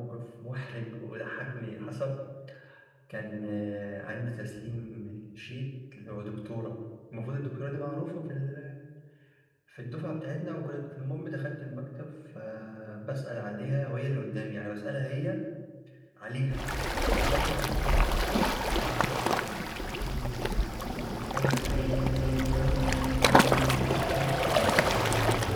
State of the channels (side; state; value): both; identical; correlation 1.00